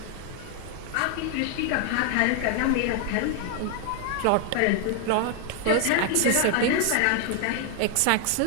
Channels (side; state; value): both; different; correlation 0.00